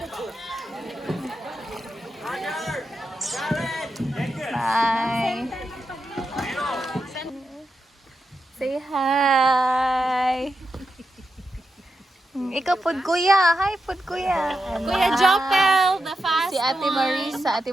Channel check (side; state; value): both; normal; correlation 0.88